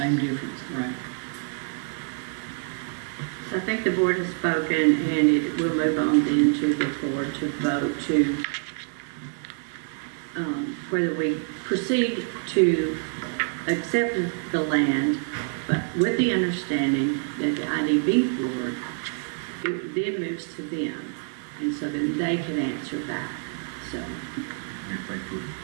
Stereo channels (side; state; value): left; silent; 58 dB below the other